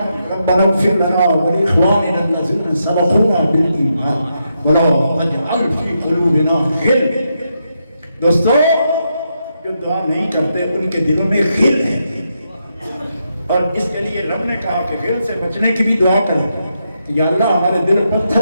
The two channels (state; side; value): inverted; both; correlation -0.82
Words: ربنا اغفر لنا ولاخواننا الذین سبقونا بالایمان ولا تجعل فی قلوبنا غل۔ دوستو جو دعا نہیں کرتے ان کے دلوں میں غل ہے، اور اس کے لیے رب نے کہا کہ غل سے بچنے کی بھی دعا کریں کہ یا اللہ ہمارے دل